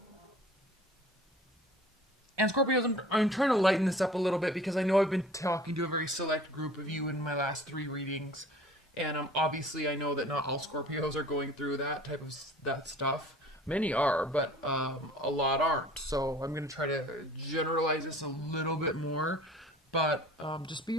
And Scorpios, I'm trying to lighten this up a little bit because I know I've been talking to a very select group of you in my last 3 readings. And obviously I know that not all Scorpios are going through that stuff. Many are, but a lot aren't. So I'm going to try to generalize this a little bit more. But just be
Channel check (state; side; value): normal; both; correlation 0.47